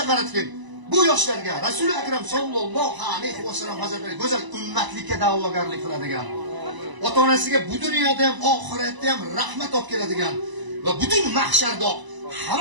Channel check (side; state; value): left; late; 1.0 ms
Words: qaratgin. Bu yoshlarga Rasul Akram sallallohu alayhi vasallam hazratlari go'zal ummatlikka da'vogarlik qiladigan, ota-onasiga bu dunyoda ham oxiratda ham rahmat olib keladigan va butun mahsharda